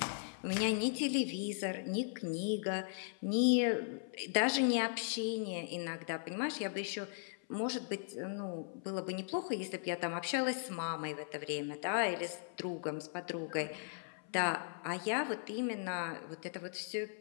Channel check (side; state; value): right; silent; 52 dB below the other